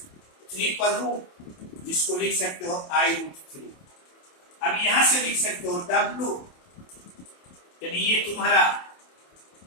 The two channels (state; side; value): late; right; 28 ms